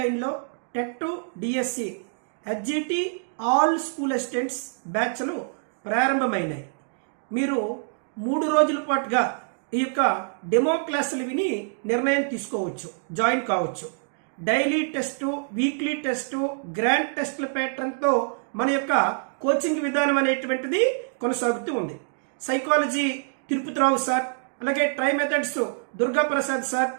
TET DSC HGT all school assistants బ్యాచ్లు ప్రారంభమైనాయి. మీరు 3 రోజుల పాటుగా ఈ యొక్క డెమో క్లాసులు విని నిర్ణయం తీసుకోవచ్చు, జాయిన్ కావచ్చు. Daily test, weekly test, grand టెస్ట్ల ప్యాటర్న్తో మన యొక్క కోచింగ్ విధానం అనేటువంటిది కొనసాగుతూ ఉంది. సైకాలజీ తిరుపతిరావు సార్, అలాగే tri methods Durga Prasad sir,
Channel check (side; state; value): left; silent; digital silence